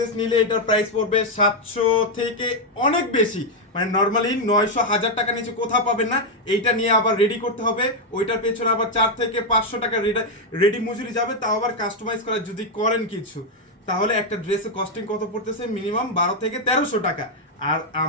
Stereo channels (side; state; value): both; normal; correlation 0.02